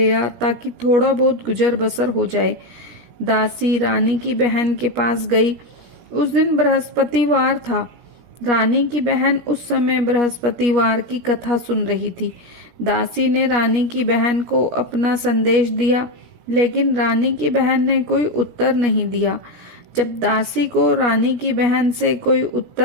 आ ताकि थोड़ा बहुत गुजर बसर हो जाए। दासी रानी की बहन के पास गई। उस दिन बृहस्पतिवार था। रानी की बहन उस समय बृहस्पतिवार की कथा सुन रही थी। दासी ने रानी की बहन को अपना संदेश दिया, लेकिन रानी की बहन ने कोई उत्तर नहीं दिया। जब दासी को रानी की बहन से कोई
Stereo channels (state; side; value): late; left; 17 ms